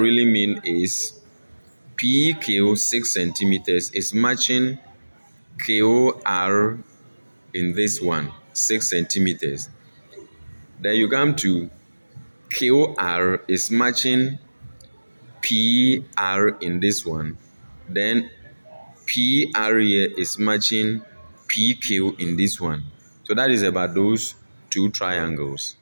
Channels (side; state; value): both; inverted; correlation -1.00